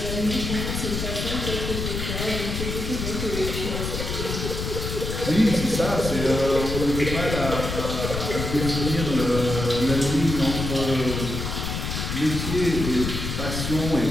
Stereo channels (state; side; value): noise; left; rumble, 3 dB below the sound